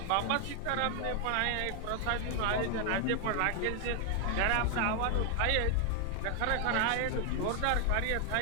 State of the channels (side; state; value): both; different; correlation 0.00